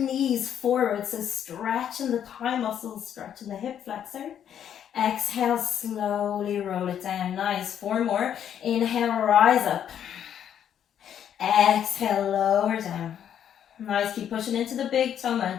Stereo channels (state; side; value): quieter; right; 9.5 dB